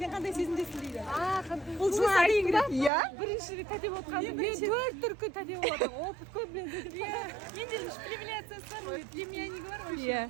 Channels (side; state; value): left; drops out; at 2.9 s